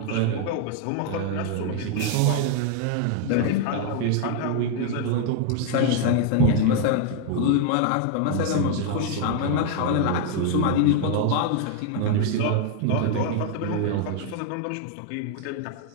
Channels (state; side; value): different; both; correlation 0.00